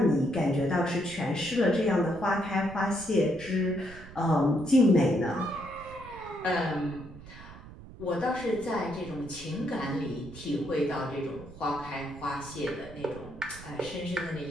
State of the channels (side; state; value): right; noise; rumble, 16 dB below the sound